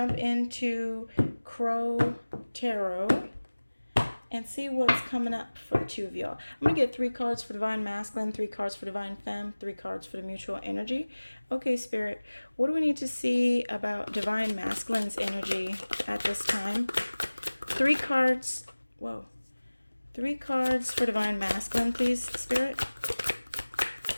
into Crow Tarot and see what's coming up for the two of y'all. I'm going to get 3 cards for Divine Masculine, 3 cards for Divine Femme, 3 cards for the Mutual Energy. Okay, Spirit, what do we need to see about Divine Masculine's energy at this time? 3 cards. Whoa. 3 cards for Divine Masculine, please, Spirit.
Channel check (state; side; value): inverted; both; correlation -1.00